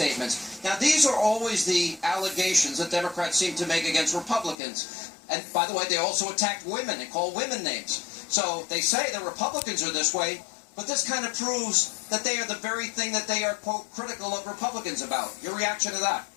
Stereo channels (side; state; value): right; drops out; at 4.5 s